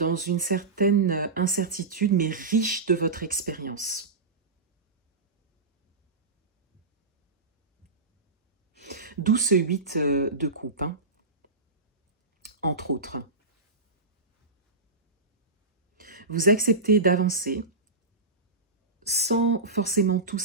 une certaine incertitude, mais riche de votre expérience. D'où ce 8 de coupe, hein, entre autres. Vous acceptez d'avancer sans forcément tout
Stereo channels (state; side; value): quieter; left; 3.6 dB